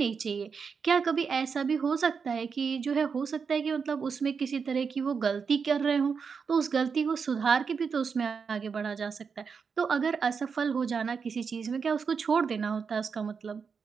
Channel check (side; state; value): left; quieter; 5.8 dB